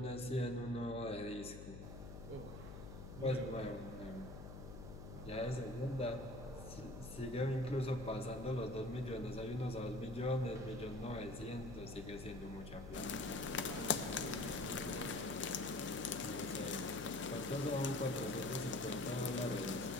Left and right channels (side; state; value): left; noise; hum, 10 dB below the sound